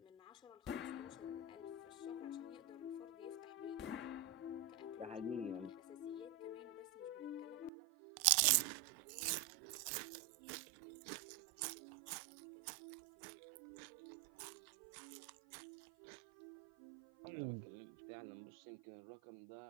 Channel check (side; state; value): left; drops out; at 7.7 s